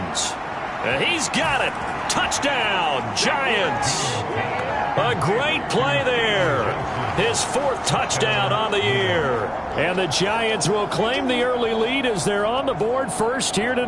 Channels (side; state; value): both; identical; correlation 1.00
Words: And he's got it. Touchdown, Giants. A great play there. His 4th touchdown on the year. And the Giants will claim the early lead as they're on the board first here